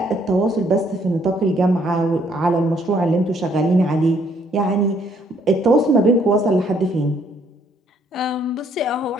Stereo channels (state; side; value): normal; both; correlation 0.66